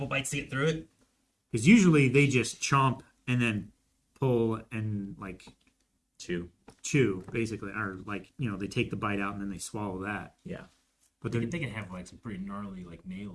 bites to get through it. Because usually they just chomp and then pull and like chew, basically, or like, you know, they take the bite out and then they swallow that. Yeah. But They then can have like some pretty gnarly like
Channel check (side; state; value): both; identical; correlation 1.00